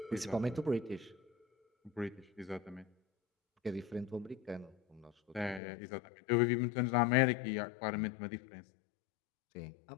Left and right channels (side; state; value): right; drops out; at 5.6 s